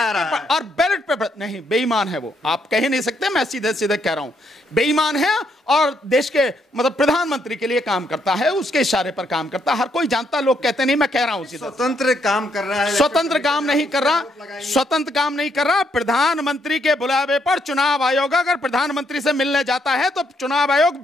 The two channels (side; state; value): both; normal; correlation 0.75